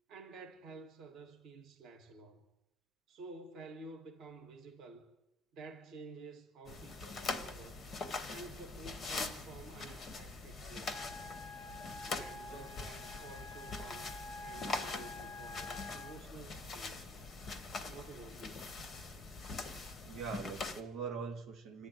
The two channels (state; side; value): normal; both; correlation 0.58